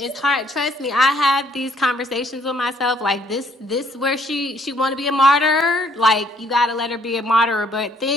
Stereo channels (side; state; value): both; normal; correlation 0.64